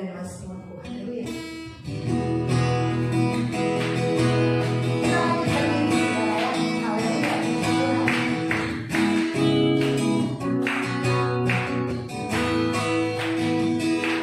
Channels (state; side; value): identical; both; correlation 1.00